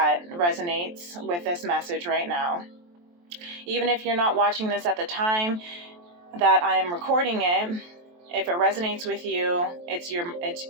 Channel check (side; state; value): left; late; 23 ms